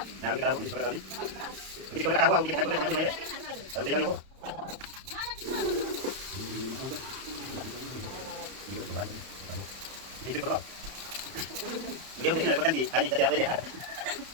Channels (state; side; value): late; left; 31 ms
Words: Nah, kita awal di sekolah tadi. Jadi kalau awal kita sama sama ya. Lalu dia mau. Itu berapa? Dia mungkin ada potensi. Ini jadi apa dia?